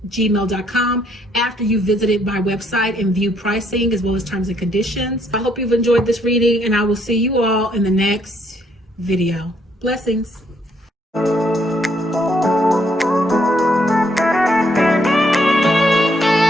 after you visited my website and view pricing as well as terms and conditions. I hope you've enjoyed this reading, and I will see you all in the next video. Blessings.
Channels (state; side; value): normal; both; correlation 0.70